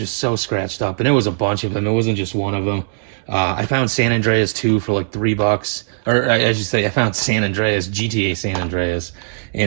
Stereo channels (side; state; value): left; silent; digital silence